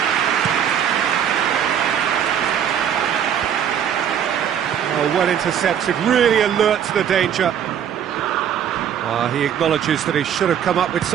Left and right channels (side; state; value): left; quieter; 9.0 dB